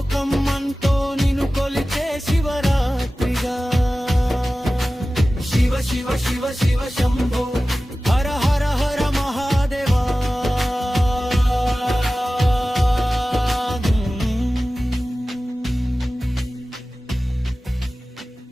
అంతో నిన్ను కొలిచే శివరాత్రిగా శివ శివ శివ శివ శంభో హర హర హర మహాదేవా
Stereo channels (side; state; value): both; normal; correlation 0.96